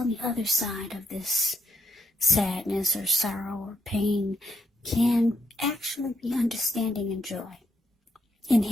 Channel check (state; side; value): normal; both; correlation 0.79